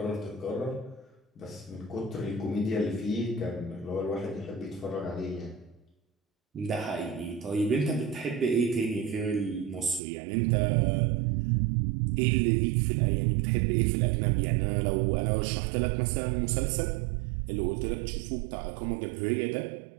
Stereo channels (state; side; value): drops out; left; at 10.0 s